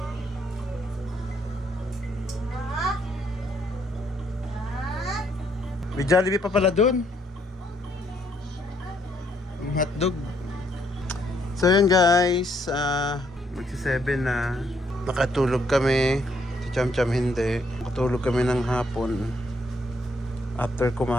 May Jollibee pa pala doon. Yung hotdog. So yun guys, magsi-7 na. Nakatulog kami. Si Cham hindi. Nakatulog kami ng hapon. After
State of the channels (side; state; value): both; normal; correlation 0.71